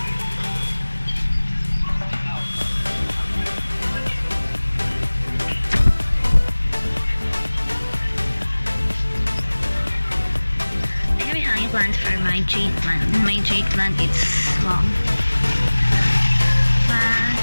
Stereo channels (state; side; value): inverted; both; correlation -1.00